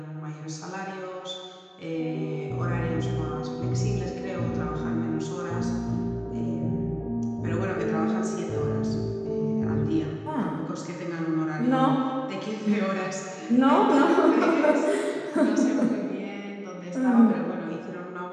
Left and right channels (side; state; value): both; identical; correlation 1.00